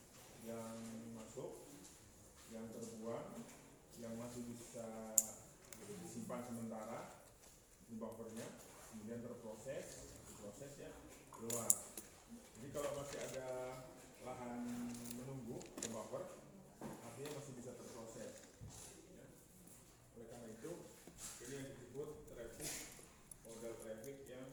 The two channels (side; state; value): both; identical; correlation 1.00